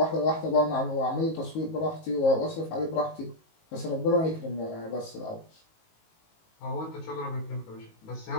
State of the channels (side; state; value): right; late; 19 ms